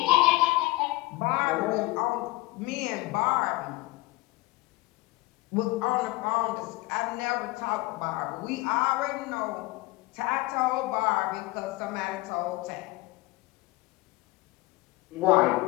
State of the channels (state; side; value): quieter; right; 20.5 dB